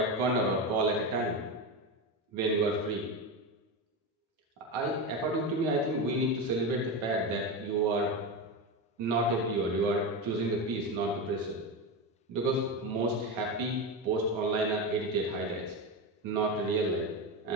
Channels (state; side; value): normal; both; correlation 0.17